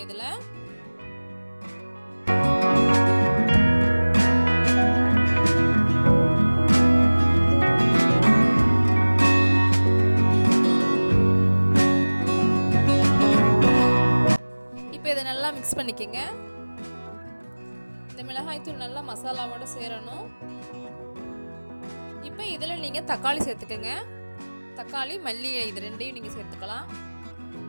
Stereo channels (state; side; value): inverted; both; correlation -1.00